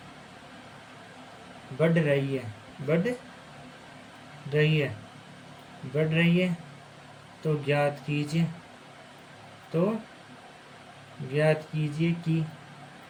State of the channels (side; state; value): both; identical; correlation 1.00